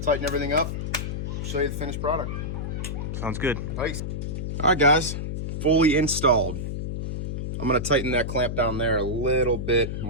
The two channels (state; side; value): noise; left; hum, 3 dB below the sound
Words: tighten everything up, show you the finished product. Sounds good. Nice. All right, guys, fully installed. I'm gonna tighten that clamp down there a little bit